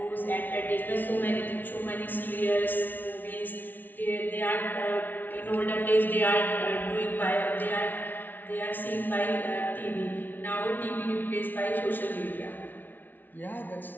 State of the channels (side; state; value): right; late; 0.085 ms